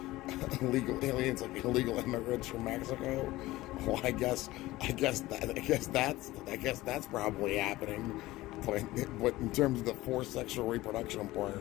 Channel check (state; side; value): quieter; right; 17.9 dB